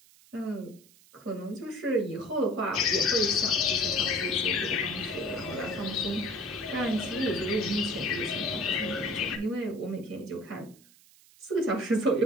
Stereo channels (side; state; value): right; noise; hiss, 26 dB below the sound